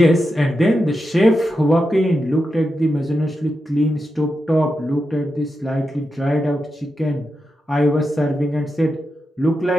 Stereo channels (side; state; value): both; normal; correlation 0.88